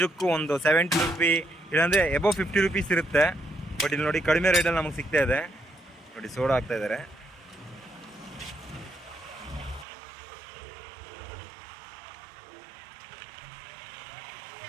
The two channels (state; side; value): drops out; left; at 9.9 s